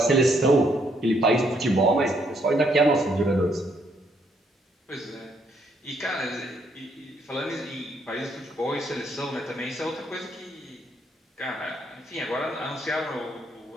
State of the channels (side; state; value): both; normal; correlation 0.71